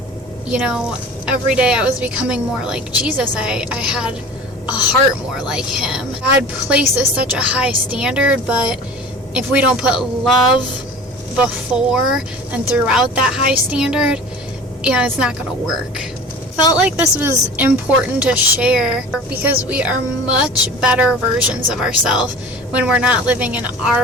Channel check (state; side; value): normal; both; correlation 0.40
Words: every day I was becoming more like Jesus. I had a heart more like Him. God places such a high standard, but if we don't put love before and throughout that high standard, it's not going to work. Felt like this was important to share because we are much better versions of ourselves when we're not living in